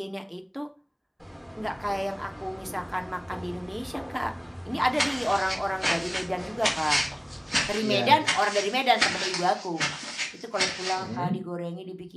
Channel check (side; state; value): both; identical; correlation 1.00